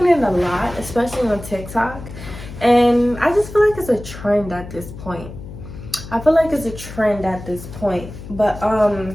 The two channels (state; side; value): noise; left; hum, 13 dB below the sound